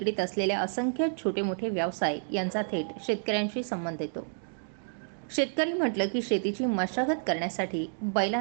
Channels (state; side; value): silent; left; digital silence